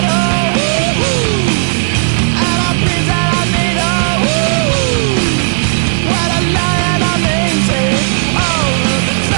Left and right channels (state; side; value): silent; left; digital silence